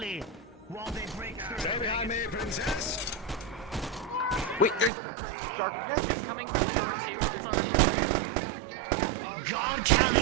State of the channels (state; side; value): drops out; left; at 4.9 s